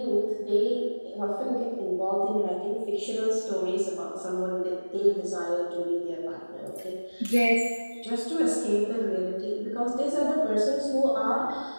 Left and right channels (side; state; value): both; inverted; correlation -1.00